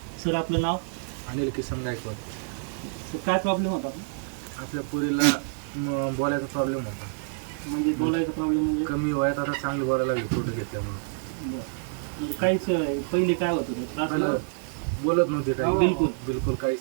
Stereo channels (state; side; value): silent; left; digital silence